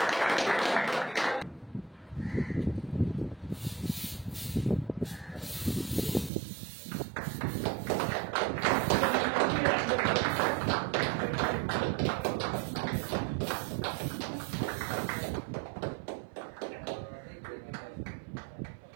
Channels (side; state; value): left; drops out; at 6.3 s